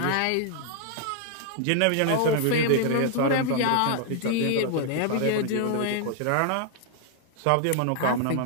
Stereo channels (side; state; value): both; different; correlation 0.00